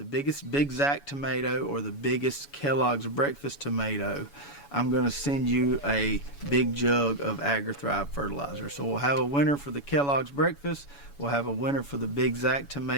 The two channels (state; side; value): late; right; 7.1 ms